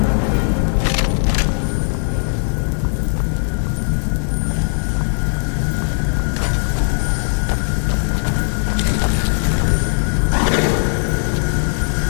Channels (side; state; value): right; silent; 60 dB below the other